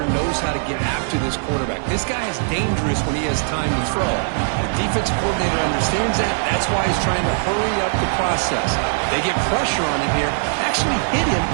knows how to get after this quarterback. This guy is dangerous when he has time to throw. The defensive coordinator understands that. That's why he's trying to hurry up the process. They get pressure on him here, actually hit him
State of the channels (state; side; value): silent; left; digital silence